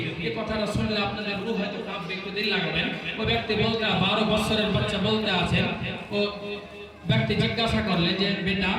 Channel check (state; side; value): identical; both; correlation 1.00